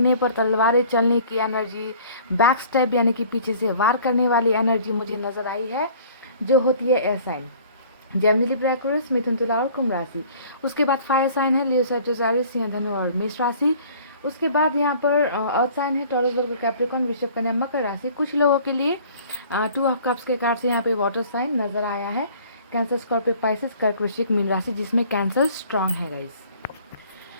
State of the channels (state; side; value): inverted; both; correlation -0.51